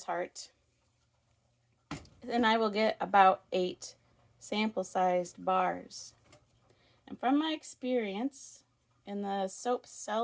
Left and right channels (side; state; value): both; identical; correlation 1.00